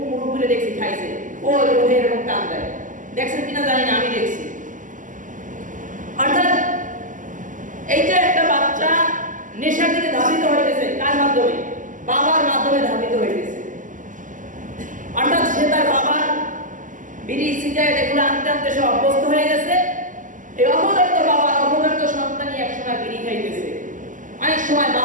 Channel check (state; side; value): late; left; 0.38 ms